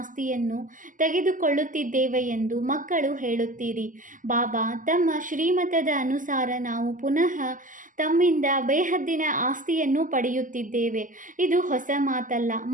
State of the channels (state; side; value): late; left; 0.38 ms